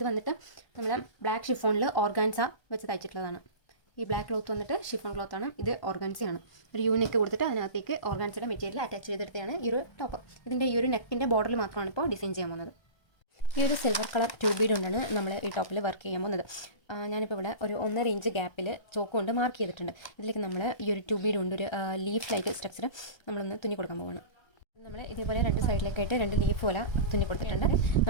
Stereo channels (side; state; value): right; late; 1.3 ms